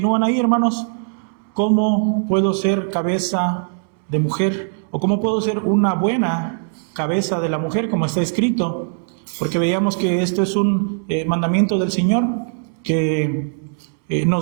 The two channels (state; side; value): silent; left; 66 dB below the other